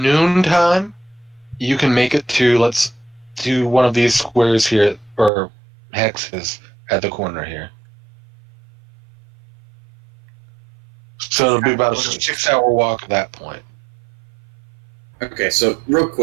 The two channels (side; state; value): left; drops out; at 5.3 s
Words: you can make it to, let's do one of these squares here, or hexes at the corner here. So it'll be about a 6-hour walk at that point. Okay, so real